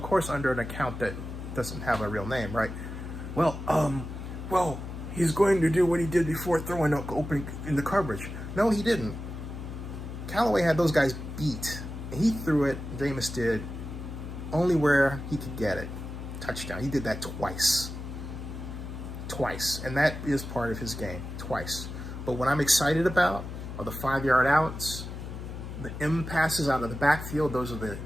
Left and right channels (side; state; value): left; noise; hum, 8 dB below the sound